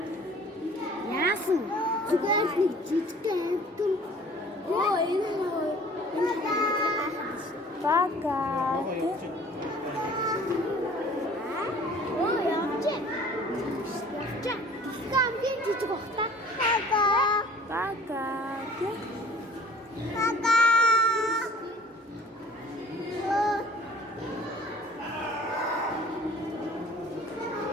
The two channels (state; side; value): normal; both; correlation 0.50